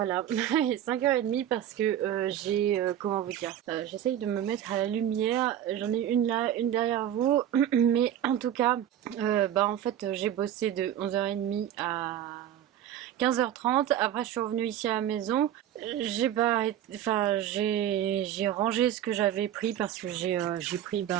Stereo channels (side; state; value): left; quieter; 10.9 dB